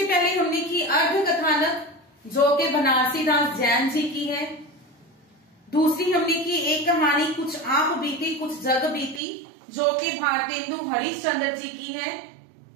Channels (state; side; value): drops out; left; at 9.2 s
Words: पहले हमने की अर्ध कथानक, जो कि बनारसी दास जैन जी की है। दूसरी हमने की एक कहानी कुछ आप बीती कुछ जग बीती, जो कि भारतेंदु हरिश्चंद्र जी की है।